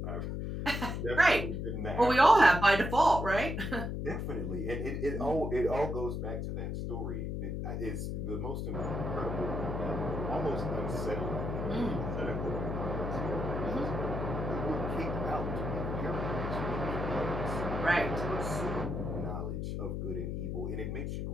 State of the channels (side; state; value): left; noise; hum, 3 dB below the sound